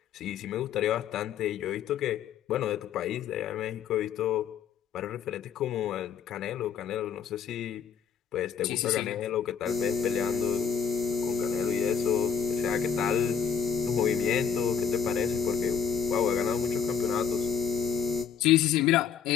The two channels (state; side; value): quieter; right; 7.2 dB